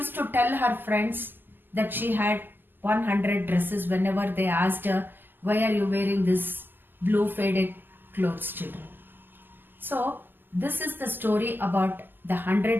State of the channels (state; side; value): late; left; 0.091 ms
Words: to tell her friends that she had 100 dresses whenever they asked her why are you wearing this blue faded clothes, children? So, this is the story about the